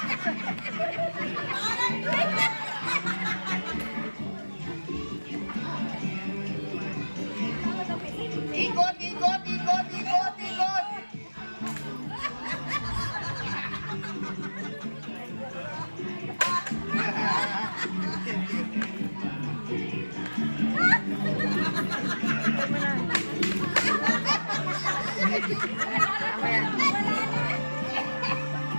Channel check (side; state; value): both; inverted; correlation -1.00